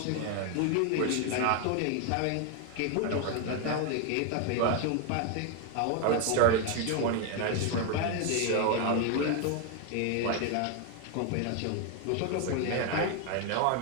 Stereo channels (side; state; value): both; different; correlation 0.01